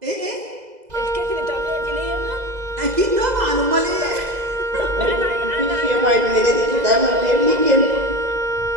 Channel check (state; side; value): late; left; 2.0 ms